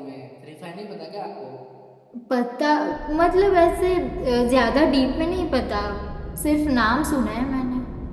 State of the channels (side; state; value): both; identical; correlation 1.00